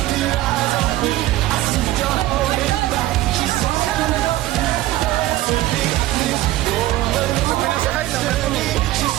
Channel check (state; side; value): quieter; left; 15.9 dB